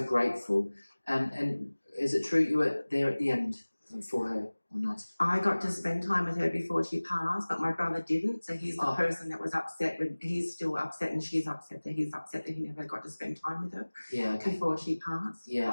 grateful. And is it true you were there at the end for her or not? I got to spend time with her before she passed, but my brother didn't. So he's the Oh. person that was upset. He's still upset, and she's upset that he's upset that he never got to spend time with her Yeah, okay. before she passed.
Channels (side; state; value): both; inverted; correlation -1.00